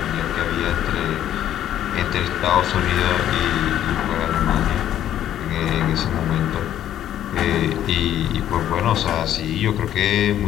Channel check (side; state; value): right; quieter; 11.3 dB